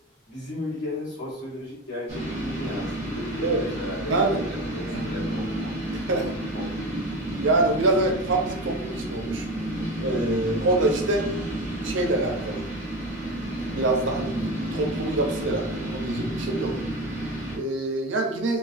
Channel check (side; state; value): both; normal; correlation 0.25